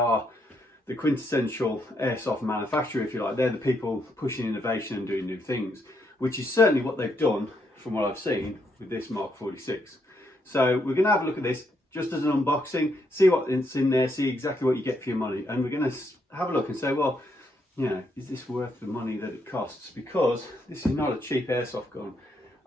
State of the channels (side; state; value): both; normal; correlation 0.76